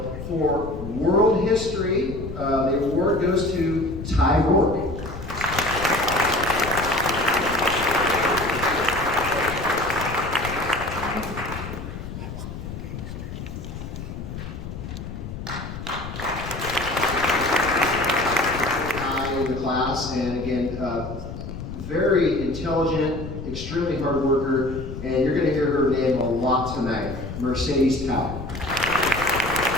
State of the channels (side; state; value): left; noise; rumble, 9 dB below the sound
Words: for world history, the award goes to Ty Rourke. And again, very intelligent, extremely hard worker, and you're going to hear her name a lot tonight, Mercedes Tao.